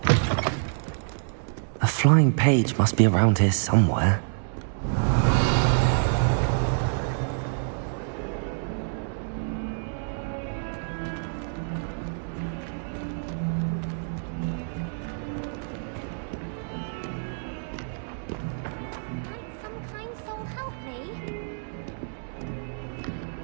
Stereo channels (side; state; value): left; silent; digital silence